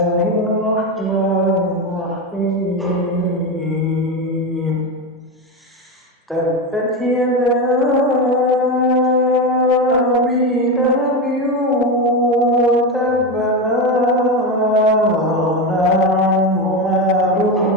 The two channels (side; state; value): both; normal; correlation 0.16